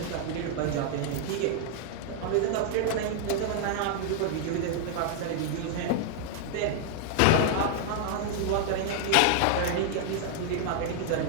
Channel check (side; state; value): both; different; correlation 0.00